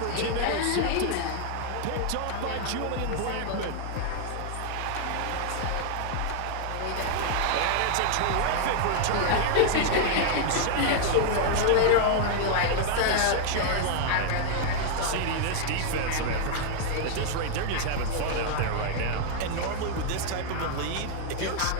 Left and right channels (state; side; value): different; both; correlation 0.00